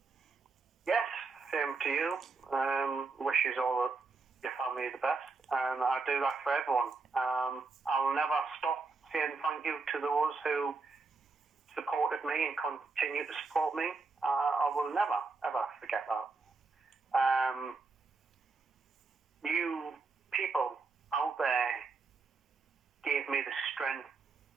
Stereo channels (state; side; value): quieter; left; 4.2 dB